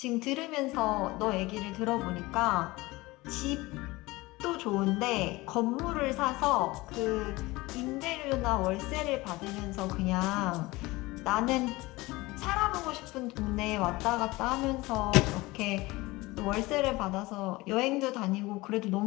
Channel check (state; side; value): quieter; right; 21.2 dB